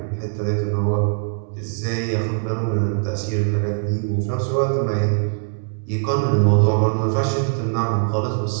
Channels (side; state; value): left; silent; digital silence